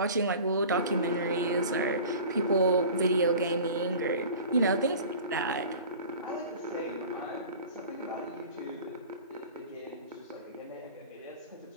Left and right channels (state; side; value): inverted; both; correlation -0.40